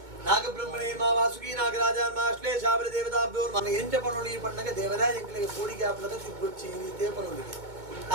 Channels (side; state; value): left; late; 2.2 ms